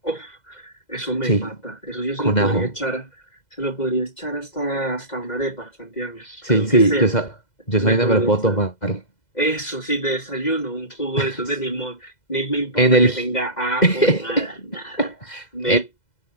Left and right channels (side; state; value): right; late; 2.0 ms